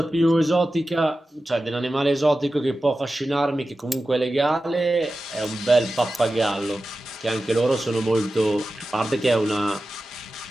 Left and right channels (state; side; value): normal; both; correlation 0.94